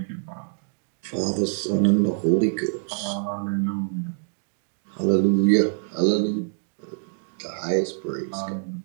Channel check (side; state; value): left; silent; digital silence